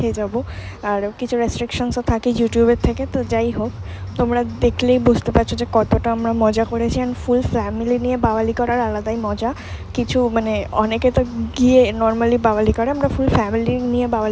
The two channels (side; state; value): both; identical; correlation 1.00